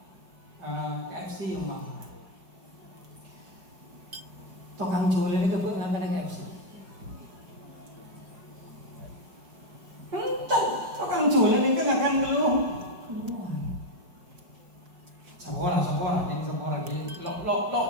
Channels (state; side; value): late; left; 5.1 ms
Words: KFC yang mbak tukang jual ini kebuk nggak ada KFC. Entah tukang jual ini kan akan keluar. Sekolah ini